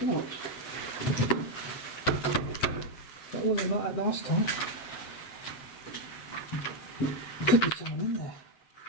locked. That wasn't like that last time. Could be someone in there.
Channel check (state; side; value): late; right; 8.1 ms